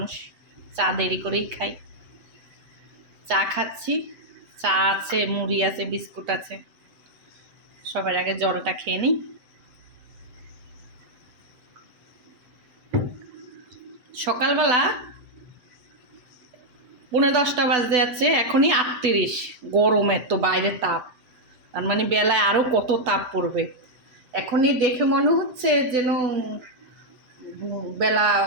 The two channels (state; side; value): late; left; 8.1 ms